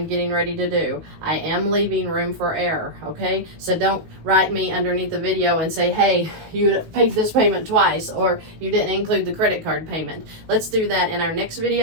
getting ready to do. I am leaving room for error, okay? So don't write me underneath the video and say, hey, you paid this payment twice, or you didn't include the credit card payment. Let's do that in our next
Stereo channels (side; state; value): left; late; 18 ms